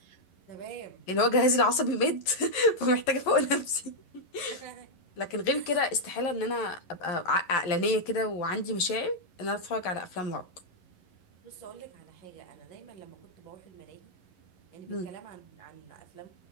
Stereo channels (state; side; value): late; right; 11 ms